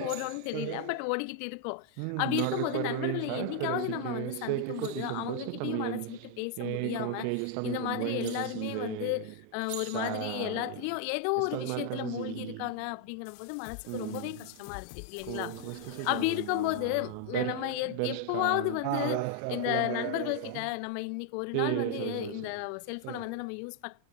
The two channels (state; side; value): different; both; correlation 0.00